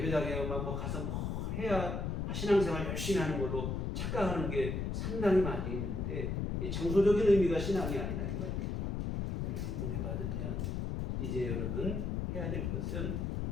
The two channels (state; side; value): noise; left; rumble, 1 dB below the sound